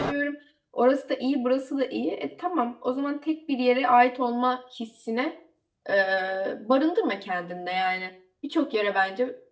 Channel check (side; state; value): both; identical; correlation 1.00